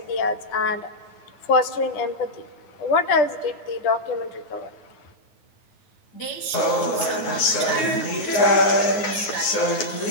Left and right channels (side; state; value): right; late; 9.5 ms